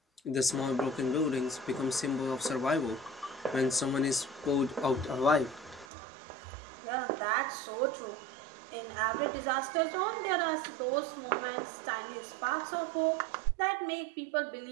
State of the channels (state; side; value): drops out; left; at 5.9 s